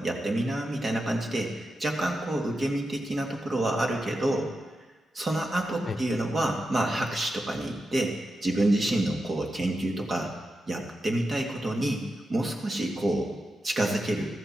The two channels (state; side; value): normal; both; correlation 0.89